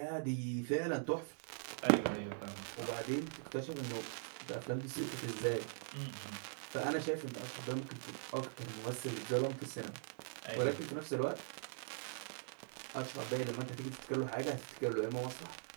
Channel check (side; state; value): left; silent; digital silence